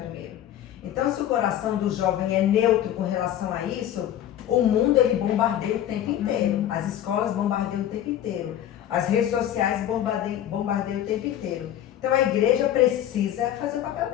Então, se o coração do jovem é neutro com relação a isso, o mundo ele bombardeia o tempo inteiro. As escolas bombardeiam o tempo inteiro. As redes sociais bombardeiam o tempo inteiro. Então, a igreja precisa fazer o papel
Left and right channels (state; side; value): quieter; right; 11.4 dB